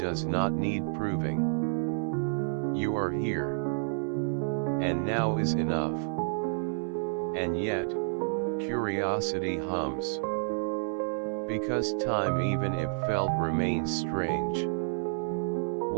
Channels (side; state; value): left; silent; 58 dB below the other